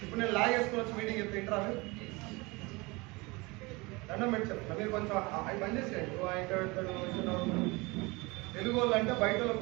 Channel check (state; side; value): quieter; left; 24.9 dB